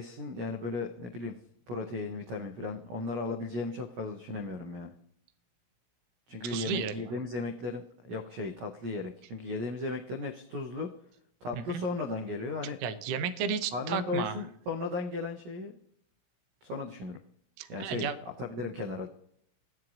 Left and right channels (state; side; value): late; left; 17 ms